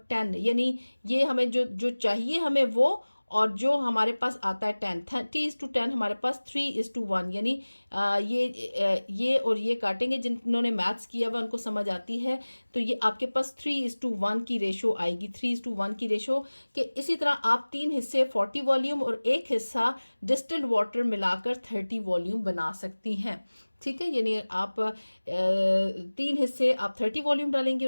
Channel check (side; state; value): both; inverted; correlation -1.00